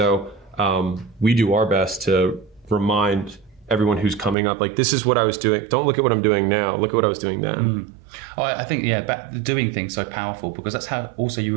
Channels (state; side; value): drops out; left; at 4.4 s